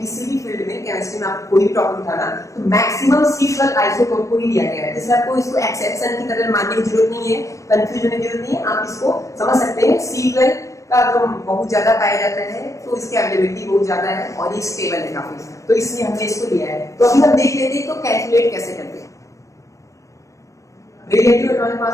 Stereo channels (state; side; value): late; right; 0.15 ms